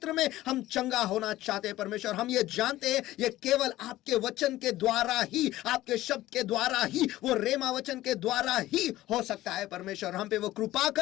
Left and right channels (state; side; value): quieter; right; 15.8 dB